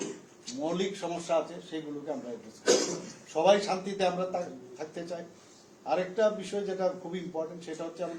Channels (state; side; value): identical; both; correlation 1.00